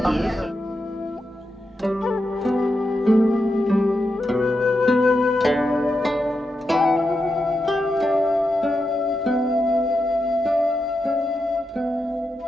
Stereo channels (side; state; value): both; normal; correlation 0.87